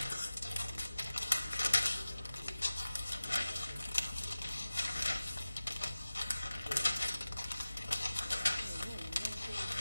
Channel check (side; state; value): both; inverted; correlation -0.97